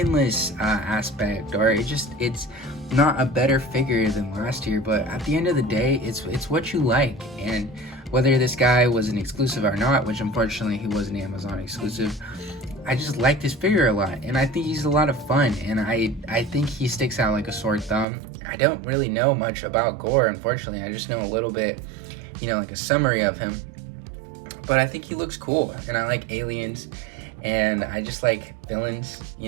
aspect, or it's not a better figure than last year. But at the end of the day, it's what you like, and whether this guy was an exclusive or not, which unfortunately he was an Amazon exclusive, I just like this figure a lot, and I think he's a lot of fun, and I think he sticks out like a sore thumb. I don't really know much about Gore, unfortunately. I just know a little bit, you know, like a summary of him, but I think he looks cool, and I like aliens, and I just like villains,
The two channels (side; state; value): left; drops out; at 18.1 s